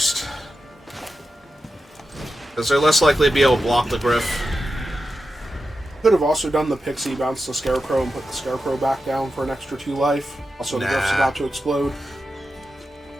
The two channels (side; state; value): both; normal; correlation 0.90